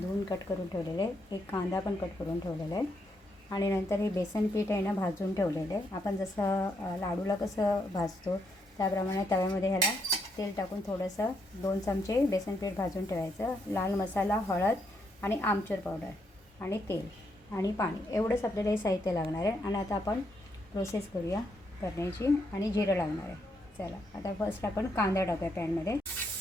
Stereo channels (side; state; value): both; normal; correlation 0.77